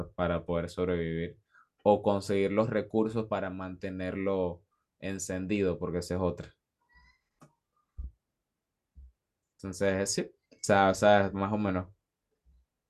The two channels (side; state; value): both; identical; correlation 1.00